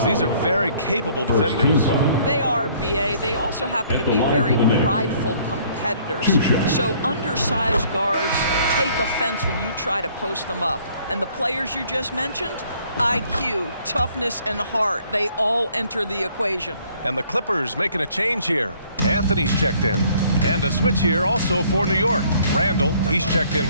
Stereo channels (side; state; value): both; inverted; correlation -0.60